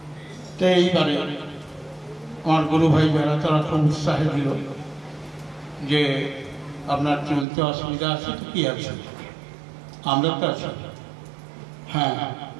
তো এইবারে আমার গুরু ভাই যারা তারা খুব উৎসাহে দিল যে আপনার চলতে অসুবিধা আছে তো কি আছে, আমরা তো আছি। হ্যাঁ,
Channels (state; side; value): drops out; left; at 7.5 s